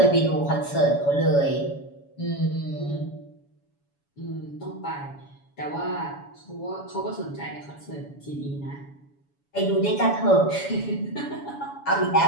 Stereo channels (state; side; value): late; right; 7.1 ms